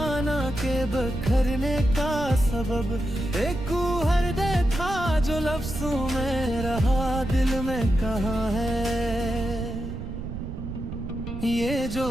के बखरने का सबब, एक हर दे था जो लफ्जों में रहा दिल में कहाँ है। ये जो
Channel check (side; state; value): right; noise; rumble, 7 dB below the sound